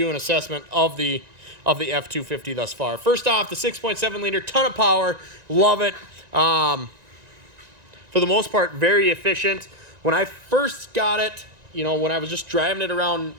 and assessment of the F250 thus far. First off, the 6.7 liter, ton of power, love it. For the most part, very efficient. When I first got it, you know, when I was just driving it around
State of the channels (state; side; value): late; left; 1.9 ms